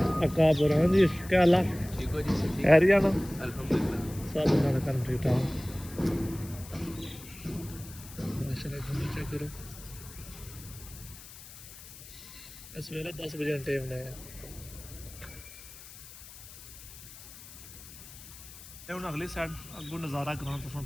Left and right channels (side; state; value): left; noise; hiss, 16 dB below the sound